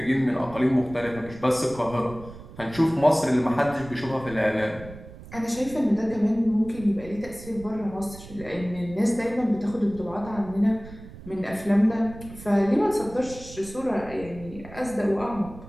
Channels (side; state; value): right; noise; rumble, 16 dB below the sound